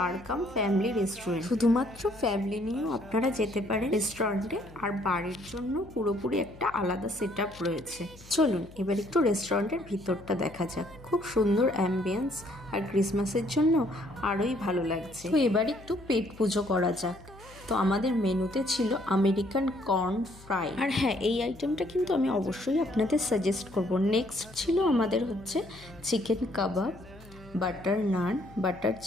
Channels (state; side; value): noise; left; hum, 21 dB below the sound